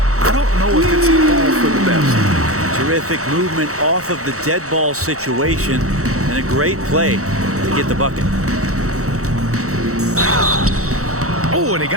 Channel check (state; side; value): late; left; 0.65 ms